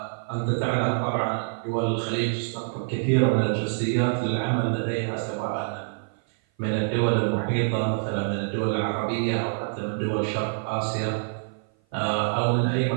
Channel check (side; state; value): left; silent; 56 dB below the other